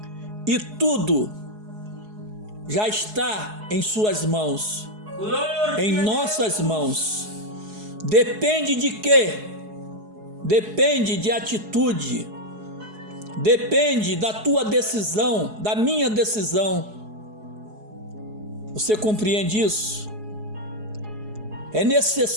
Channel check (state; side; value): late; left; 4.7 ms